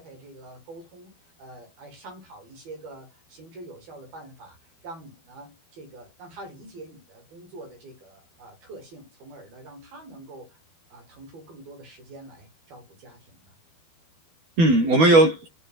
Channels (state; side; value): late; left; 12 ms